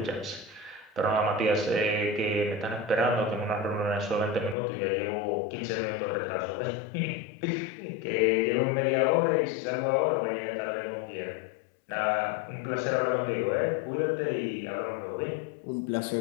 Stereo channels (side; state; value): right; drops out; at 4.5 s